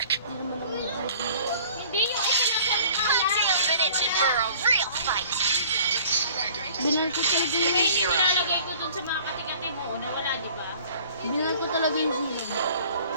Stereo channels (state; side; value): inverted; both; correlation -0.50